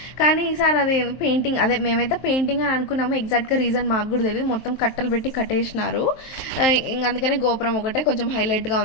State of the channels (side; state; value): right; late; 23 ms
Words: కానీ ఈసారి అది పెయింటింగ్, అదే మేమైతే పెయింటింగ్ అని అనుకున్నాము. ఎగ్జాక్ట్గా రీజన్ మాకు కూడా తెలియదు. మొత్తం కట్టెలు పెట్టి కట్టేసినారు. ఇంక అందుకని గోపురం ఒకటే కొంచెం హైలైట్గా